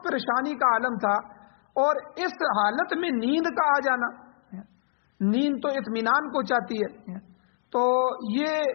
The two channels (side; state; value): right; silent; digital silence